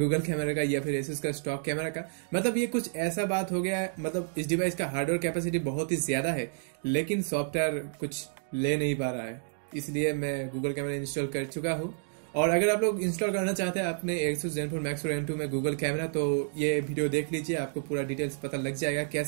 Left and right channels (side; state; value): left; silent; digital silence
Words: कैमरा का या फिर Asus का स्टॉक कैमरा का। मतलब ये कुछ ऐसा बात हो गया है, मतलब इस डिवाइस का हार्डवेयर कैपेसिटी बहुत ही ज्यादा है लेकिन सॉफ्टवेयर कुछ ले नहीं पा रहा है, इसलिए मैं गूगल कैमरा इंस्टॉल कर चुका हूँ। और अगर आप लोग इंस्टॉल करना चाहते हैं अपने Asus ZenFone Max Pro M2 में गूगल कैमरा तो ये वीडियो देख लीजिए, आपको पूरा डिटेल्स पता लग जाएगा